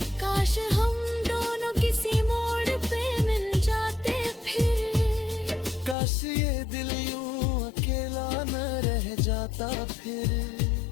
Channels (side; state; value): right; drops out; at 6.0 s